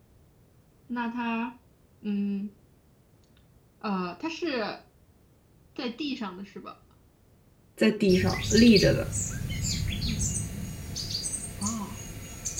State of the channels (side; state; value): both; identical; correlation 1.00